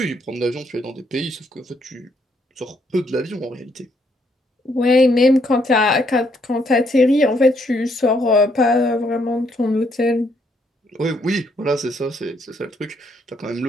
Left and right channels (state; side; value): normal; both; correlation 0.72